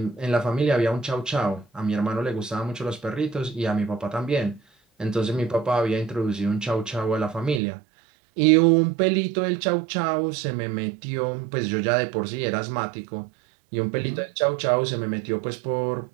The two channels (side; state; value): left; drops out; at 7.6 s